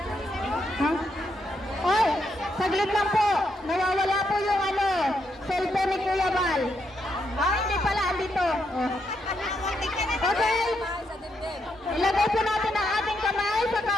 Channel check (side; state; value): both; normal; correlation 0.79